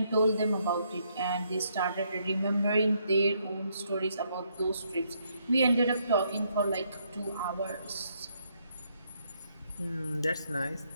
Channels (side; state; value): both; inverted; correlation -0.73